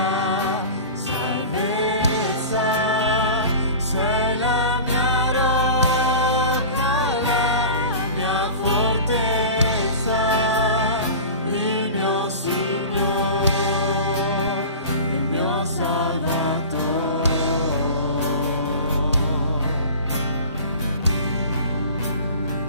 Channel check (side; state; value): both; inverted; correlation -0.37